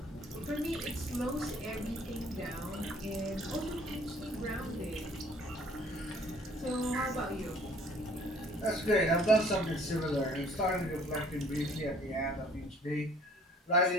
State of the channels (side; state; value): both; normal; correlation 0.56